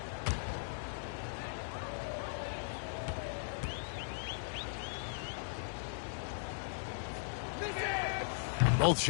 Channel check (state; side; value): silent; right; digital silence